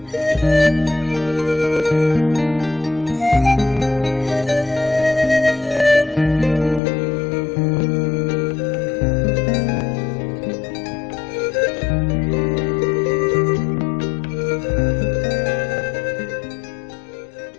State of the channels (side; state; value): right; drops out; at 6.8 s